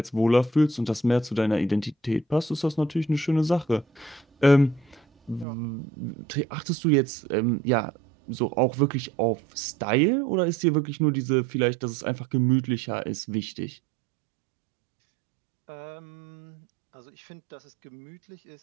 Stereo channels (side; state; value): left; drops out; at 5.5 s